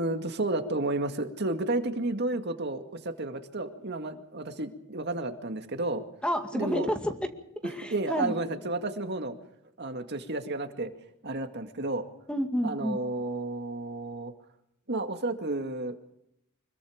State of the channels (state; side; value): normal; both; correlation 0.22